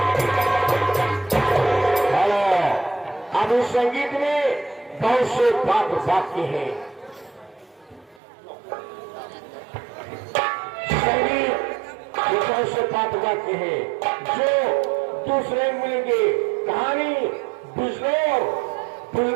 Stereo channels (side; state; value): left; drops out; at 8.2 s